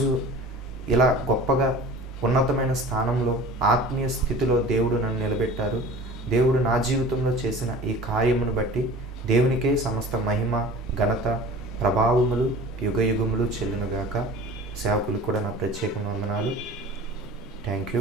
ఇలా గొప్పగా ఉన్నతమైన స్థానంలో ఆత్మీయ స్థితిలో దేవుడు నన్ను నిలబెట్టారు. దేవుడు నా జీవితంలో చేసిన ఈ కార్యమును బట్టి దేవునికే సమస్త మహిమ, ఘనత, ప్రభావములు యుగయుగములు చెల్లునుగాక. సేవకులకు కూడా నా ప్రత్యేక వందనాలు. Thank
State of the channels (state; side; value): normal; both; correlation 0.41